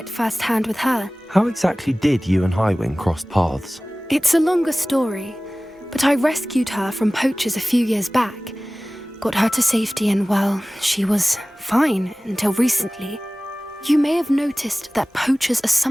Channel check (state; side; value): normal; both; correlation 0.98